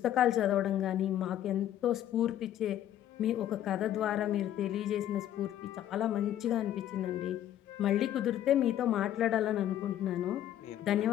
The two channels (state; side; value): quieter; right; 11.7 dB